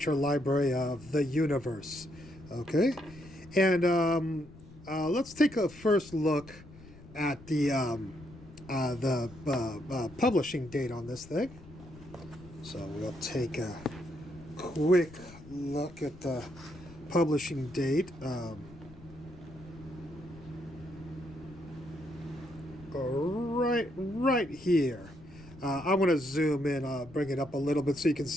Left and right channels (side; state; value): left; noise; rumble, 19 dB below the sound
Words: Library of the Universe. Okay, and let's take a first look at the publishing date on this thing. So we'll take a quick look at the publishing date. Right here. I want to zoom in, bring it up a little bit so you can